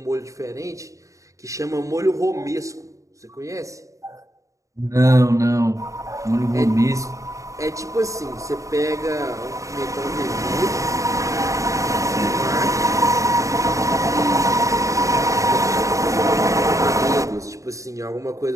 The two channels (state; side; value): late; left; 0.16 ms